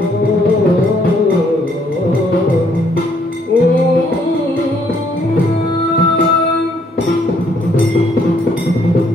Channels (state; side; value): normal; both; correlation 0.67